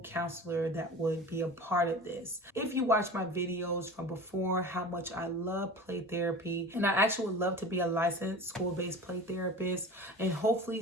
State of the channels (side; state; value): both; normal; correlation 0.36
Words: counselor that would be a part of this. If you watch my videos from before, how much I love play therapy, and I actually would love to be a licensed school-based play therapist, and hopefully